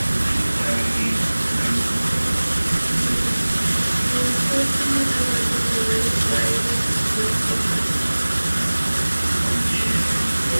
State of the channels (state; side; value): inverted; both; correlation -1.00